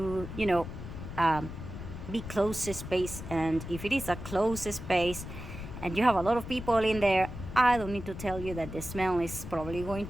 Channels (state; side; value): noise; left; rumble, 10 dB below the sound